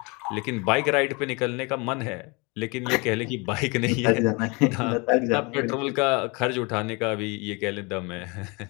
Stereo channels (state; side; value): quieter; right; 28.8 dB